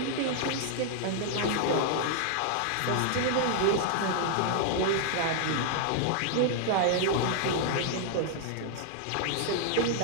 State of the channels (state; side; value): different; both; correlation -0.01